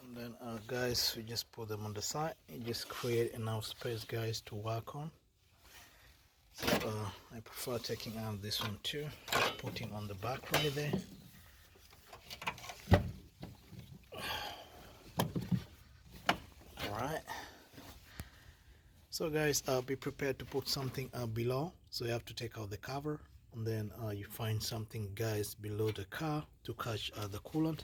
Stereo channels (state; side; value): identical; both; correlation 1.00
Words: And then guys, we just put them on the side. You just create enough space guys to work on. So I prefer taking out this one too, just putting on the back right there. Alright, so guys, be prepared to put something below. So you have to take out the cover, and then you find something guys below the car to catch the